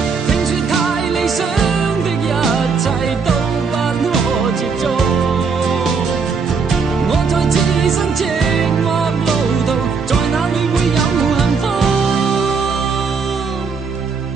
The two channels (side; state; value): left; quieter; 5.2 dB